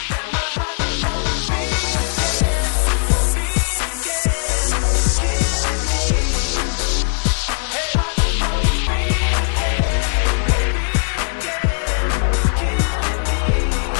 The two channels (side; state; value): right; silent; 67 dB below the other